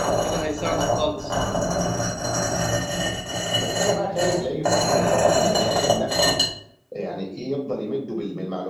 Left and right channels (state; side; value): identical; both; correlation 1.00